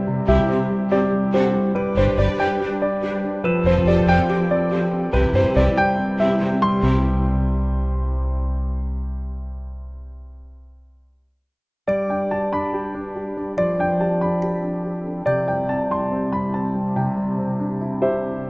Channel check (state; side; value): identical; both; correlation 1.00